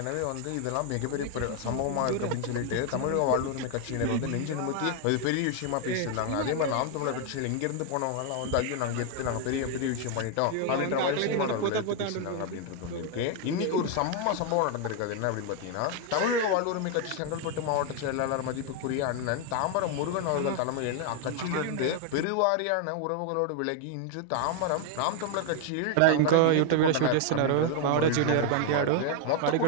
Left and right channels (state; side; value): different; both; correlation 0.00